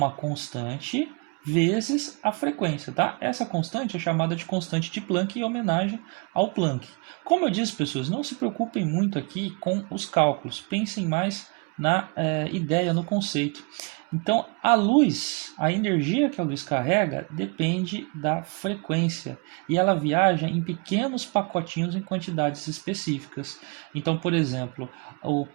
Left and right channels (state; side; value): quieter; left; 32.0 dB